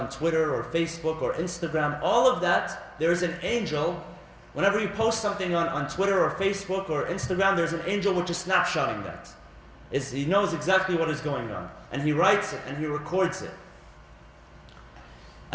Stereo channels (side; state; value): both; identical; correlation 1.00